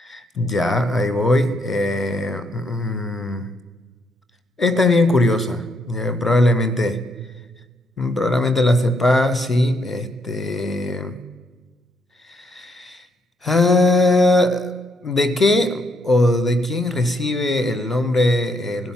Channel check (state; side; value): normal; both; correlation 0.74